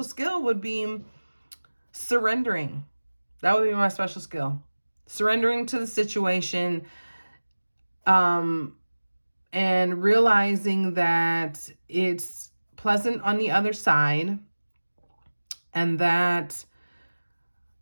skill would be surrendering. That would be my special skill. Surrendering to the situation, and realizing that it's pleasant on the other side, and that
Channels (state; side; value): inverted; both; correlation -1.00